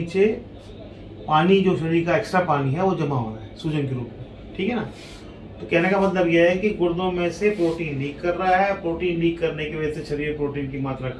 पानी, जो शरीर का एक्स्ट्रा पानी है वो जमा हो रहा है सूजन के रूप में, ठीक है ना। तो कहने का मतलब यह है कि गुर्दों में से प्रोटीन लीक कर रहा है। प्रोटीन लीक करने की वजह से शरीर में प्रोटीन की मात्रा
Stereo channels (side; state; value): both; identical; correlation 1.00